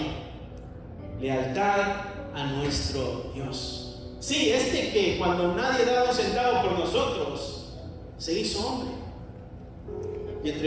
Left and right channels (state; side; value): identical; both; correlation 1.00